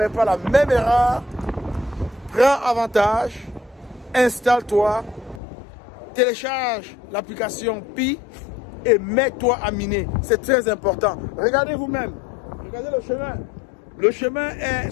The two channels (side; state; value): right; drops out; at 5.4 s